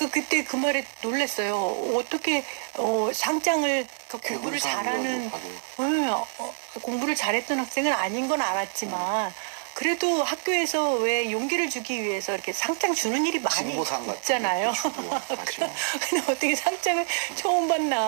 그때 그 말에 놀랐어요. 어떻게 상장을 공부를 잘하는 공부를 잘했던 학생은 아닌 건 알았지만 그래도 학교에서 왜 용기를 주기 위해서 이렇게 상장 주는 일이 많이 있잖아요. 근데 어떻게 상장을 처음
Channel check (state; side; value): silent; left; digital silence